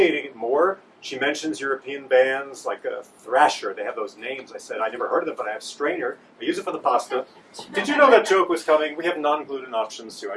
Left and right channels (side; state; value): both; identical; correlation 1.00